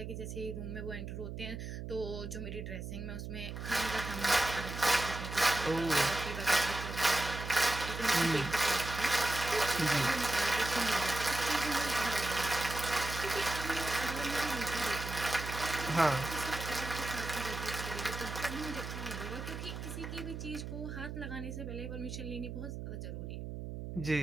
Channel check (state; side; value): noise; right; hum, 7 dB below the sound